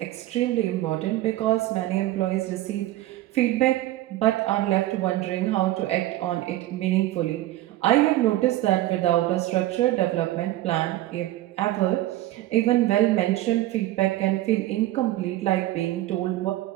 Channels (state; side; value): quieter; left; 15.7 dB